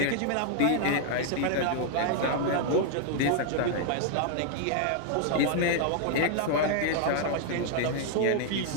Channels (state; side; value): different; both; correlation 0.00